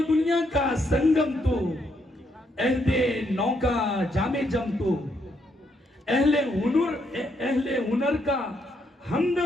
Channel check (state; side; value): normal; both; correlation 0.76